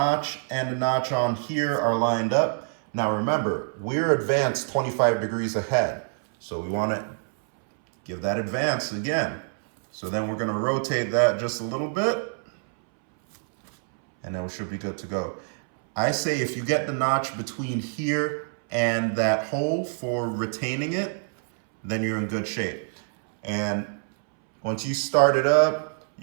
and the notch on here are lined up. Now remember, we're advanced 25 degrees ahead. So we want to give that advance again. So then we're going to rotate that just a little bit, and then we should be good to go. I say if you get the notch between here and that hole for retaining it, then you're in good shape. And once you start it up,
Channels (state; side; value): silent; left; 61 dB below the other